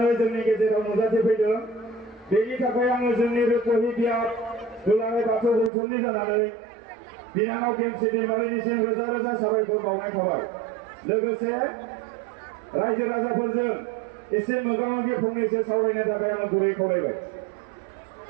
जोंनि गेजेराव नुजाथिफैदों। बेनि थाखाय आङो जोंनि रुपहि बियाब दुलाराय बाथौ गौथुमनि जानानै बिनानाव गेमस्रि दैमारिनिसिम रोजा रोजा साबायखर बावनाय थाबाय। लोगोसे रायजो राजाफोरजों एसे मोगा-मोगि फंनैसो सावरायनो थाखाय आङो गुरै खावलायबाय।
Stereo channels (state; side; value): drops out; left; at 5.7 s